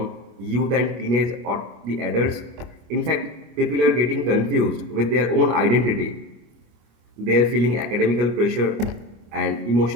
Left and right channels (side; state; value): left; late; 25 ms